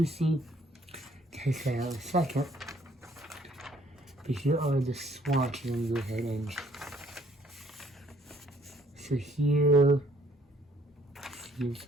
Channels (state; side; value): normal; both; correlation 0.63